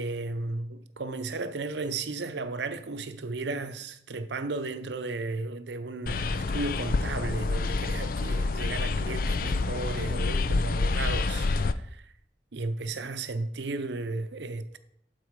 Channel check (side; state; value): both; normal; correlation 0.63